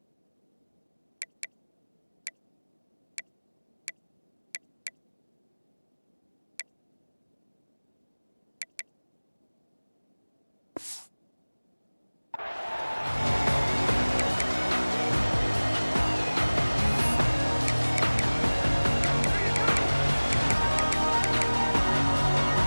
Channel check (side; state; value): both; inverted; correlation -1.00